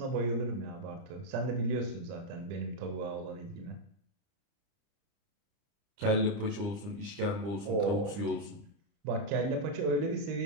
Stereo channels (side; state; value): left; late; 30 ms